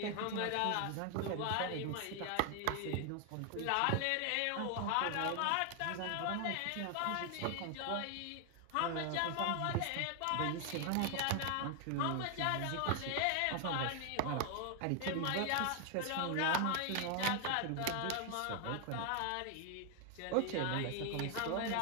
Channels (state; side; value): different; both; correlation 0.00